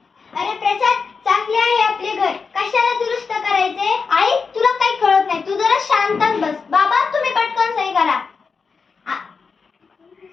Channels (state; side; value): quieter; right; 5.1 dB